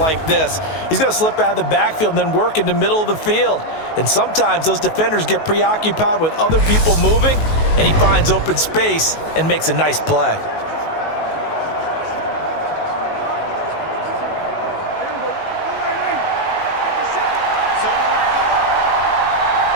this. He's going to slip out of the backfield and then work in the middle of the field. And sometimes those defenders get preoccupied with other people moving, and he finds open space and makes a nice play.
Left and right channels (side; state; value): right; late; 19 ms